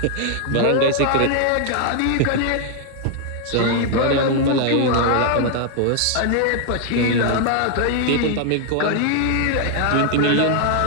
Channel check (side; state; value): both; different; correlation 0.00